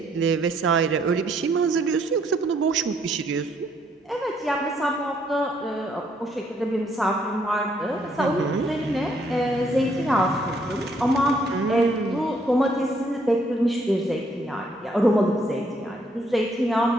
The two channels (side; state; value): both; normal; correlation 0.69